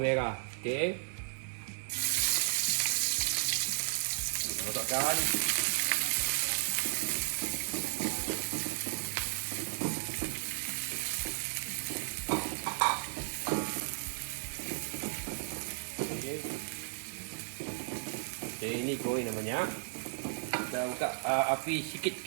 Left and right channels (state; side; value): silent; left; digital silence